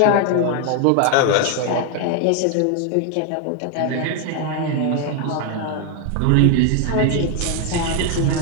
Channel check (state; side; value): different; both; correlation 0.01